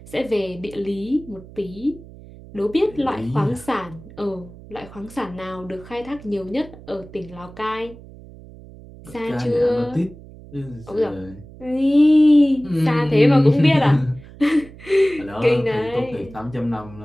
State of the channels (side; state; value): right; noise; hum, 19 dB below the sound